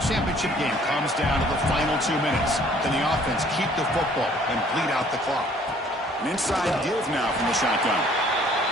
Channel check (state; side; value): normal; both; correlation 0.58